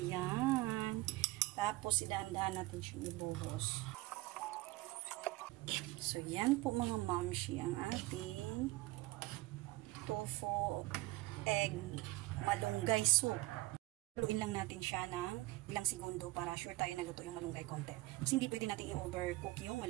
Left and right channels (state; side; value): quieter; left; 20.0 dB